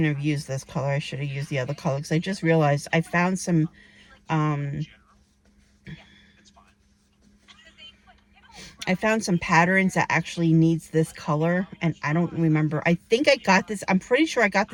have used this color. I should have used the other color, because I just realized I found some, patterns that actually needs this color, and I don't remember. I think I got this. I'm pretty sure I got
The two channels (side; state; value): both; identical; correlation 1.00